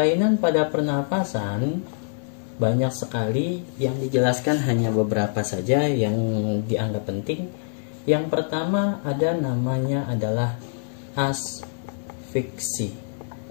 pada pernapasan banyak sekali, yang dijelaskan hanya beberapa saja yang dianggap penting. Yang pertama namanya adalah asfiksi,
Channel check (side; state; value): right; silent; digital silence